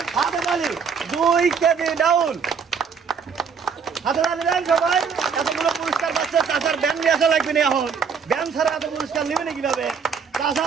হাতে তালি। 2 কেজি ডাউল, হাতে তালি সবাই। এতগুলো পুরস্কার পাচ্ছে। চাচার ব্যান নিয়ে আসা লাগবে না। এখন ব্যান ছাড়া এত পুরস্কার নেবেন কিভাবে? চাচা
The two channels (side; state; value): left; quieter; 6.1 dB